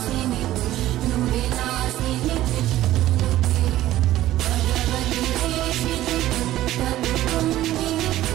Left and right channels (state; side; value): quieter; left; 14.4 dB